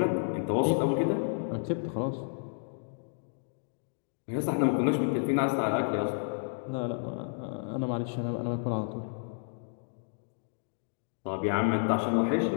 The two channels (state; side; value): silent; right; digital silence